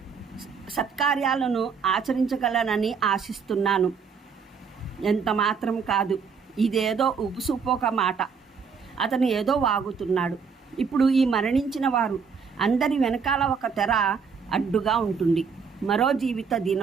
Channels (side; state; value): left; quieter; 5.9 dB